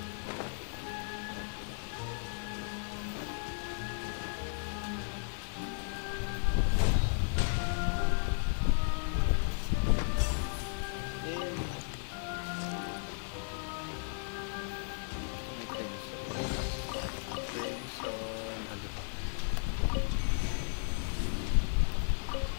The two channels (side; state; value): right; silent; 55 dB below the other